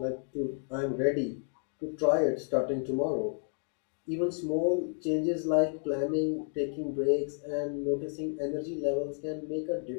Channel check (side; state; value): right; silent; 57 dB below the other